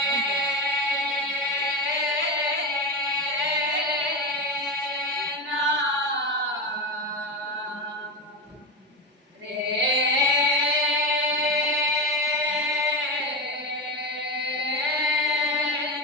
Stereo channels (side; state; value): both; normal; correlation 0.17